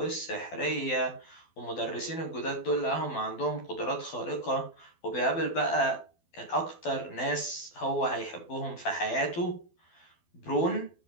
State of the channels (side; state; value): right; late; 12 ms